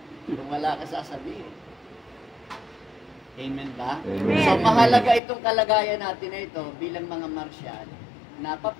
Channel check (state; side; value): drops out; right; at 5.2 s